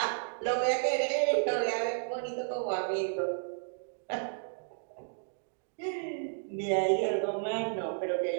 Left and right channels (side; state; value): left; silent; digital silence